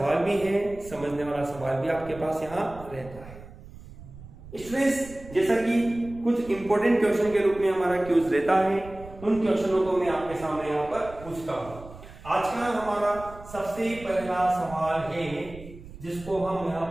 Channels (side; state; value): right; noise; rumble, 17 dB below the sound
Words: भी है, समझने वाला सवाल भी आपके पास यहाँ रहता है। स्टूडेंट्स, जैसा कि कुछ इंपॉर्टेंट क्वेश्चन के रूप में हमारा क्यूज रहता है, उन क्वेश्चनों को मैं आपके सामने यहाँ पर पूछता हूँ। आज का हमारा सबसे पहला सवाल है जिसको हम यहाँ